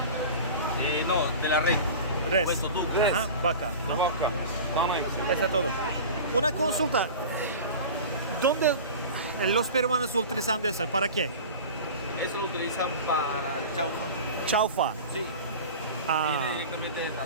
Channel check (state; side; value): inverted; both; correlation -0.34